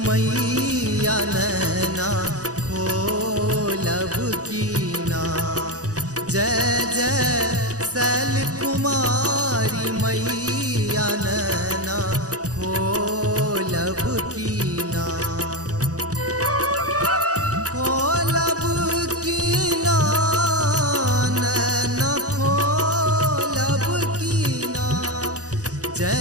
मैया नैना खोलब कीना। जय जय शैल कुमारी मैया नैना खोलब कीना। खोलब कीना नैना खोलब कीना।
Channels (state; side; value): late; left; 0.67 ms